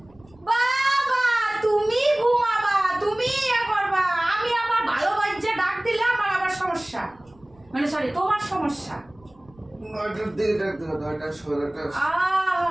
বাবা তুমি ঘুমাবা, তুমি ইয়া করবা, আমি আমার ভালো বাচ্চা ডাক দিলে আমার আবার সমস্যা, মানে সরি তোমার সমস্যা। 9টার দিকে ডাক দিবে, 9টা 16টা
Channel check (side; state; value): right; noise; rumble, 29 dB below the sound